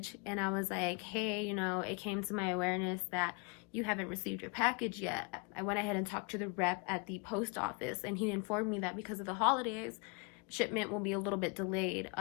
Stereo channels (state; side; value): quieter; right; 32.0 dB